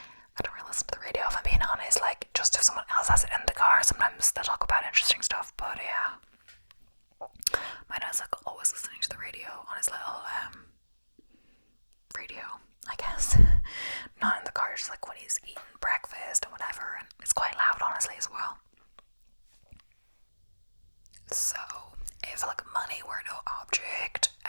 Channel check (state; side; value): inverted; both; correlation -1.00